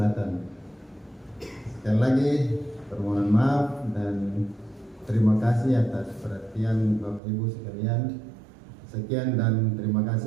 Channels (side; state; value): left; drops out; at 7.2 s